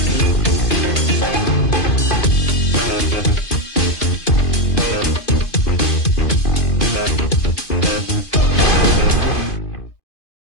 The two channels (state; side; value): late; right; 2.5 ms